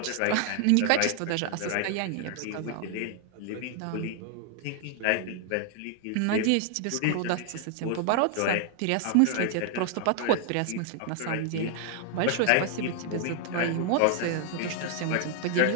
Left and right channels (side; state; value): both; different; correlation 0.00